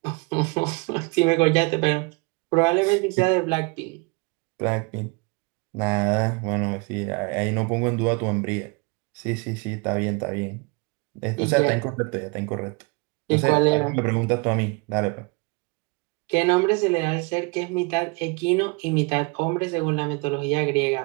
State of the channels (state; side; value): quieter; left; 29.8 dB